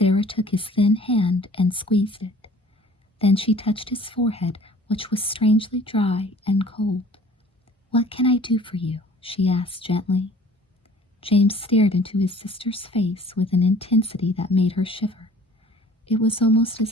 took his thin hand and squeezed it. Then she touched his forehead, which was strangely dry and cold. "What can I do for you?" she asked gently. James stared into his sister's face with an intensity that made her shiver. It was almost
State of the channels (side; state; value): both; normal; correlation 0.50